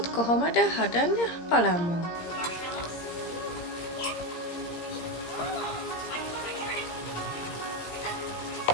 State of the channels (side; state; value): right; late; 17 ms